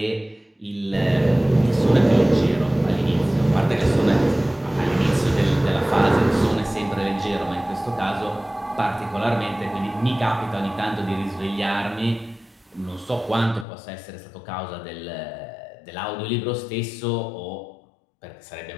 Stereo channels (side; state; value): right; drops out; at 13.7 s